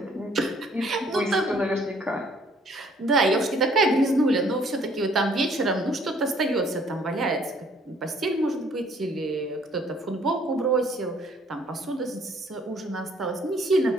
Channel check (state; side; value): normal; both; correlation 0.61